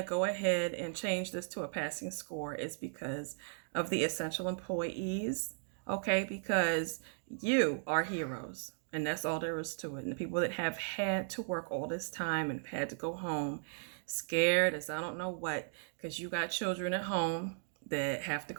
to go ahead and change this to a passing score is because of the essential employees, okay? Because you are heroes, and that's all there is to it. And the people that have had to work all this time and had to go home scared as I don't know what, because you got children at home that have to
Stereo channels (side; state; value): left; silent; digital silence